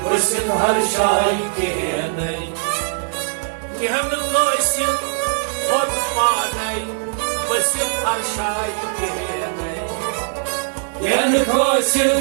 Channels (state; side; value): silent; left; 66 dB below the other